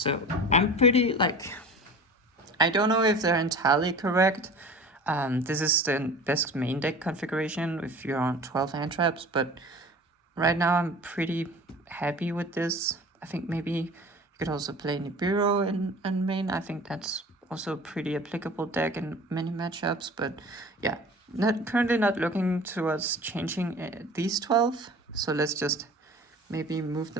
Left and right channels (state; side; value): normal; both; correlation 0.40